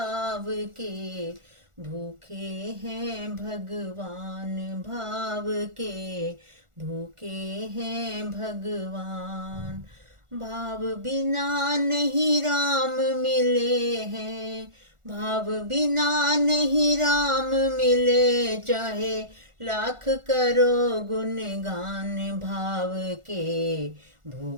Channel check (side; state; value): left; late; 1.4 ms